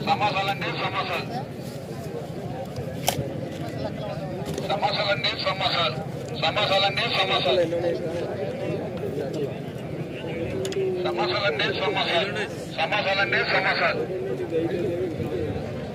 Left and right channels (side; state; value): both; identical; correlation 1.00